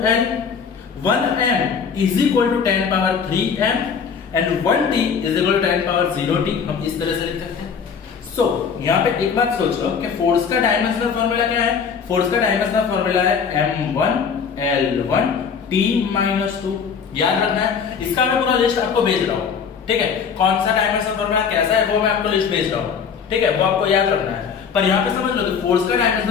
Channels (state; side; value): quieter; right; 6.5 dB